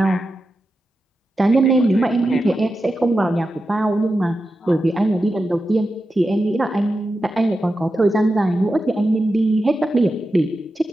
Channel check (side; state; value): both; normal; correlation 0.90